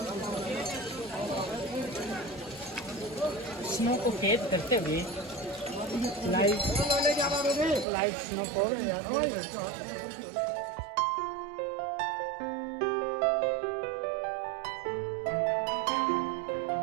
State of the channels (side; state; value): left; drops out; at 7.9 s